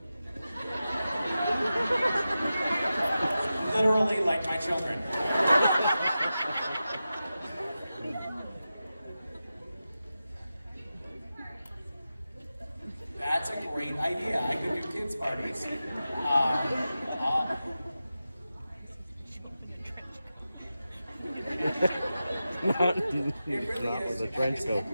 Literally like my children. That's a great idea. I could do kids' parties. Not It really with is. a trench It's coat.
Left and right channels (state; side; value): inverted; both; correlation -0.92